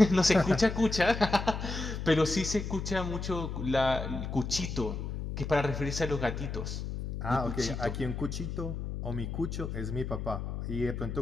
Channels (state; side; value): noise; left; hum, 5 dB below the sound